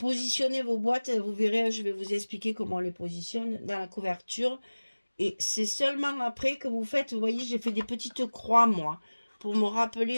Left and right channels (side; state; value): both; inverted; correlation -1.00